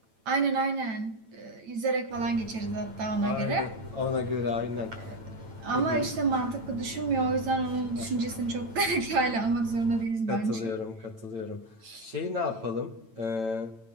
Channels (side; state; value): left; late; 9.0 ms